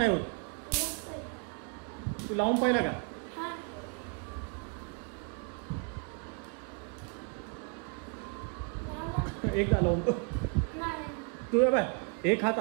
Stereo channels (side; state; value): left; quieter; 36.7 dB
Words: होत. तू लावून पाहिला का. एकदा लावून तू बाय. एक हात